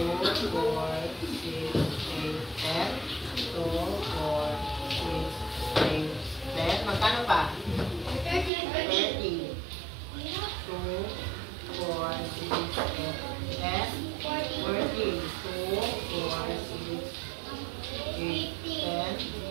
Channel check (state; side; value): drops out; left; at 8.5 s